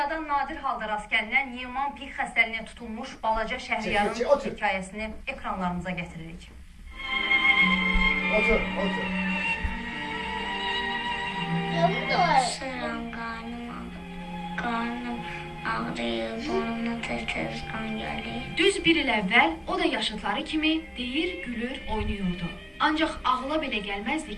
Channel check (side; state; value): both; identical; correlation 1.00